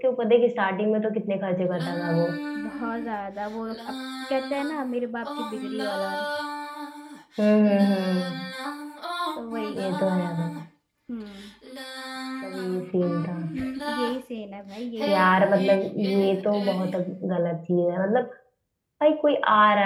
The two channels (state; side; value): identical; both; correlation 1.00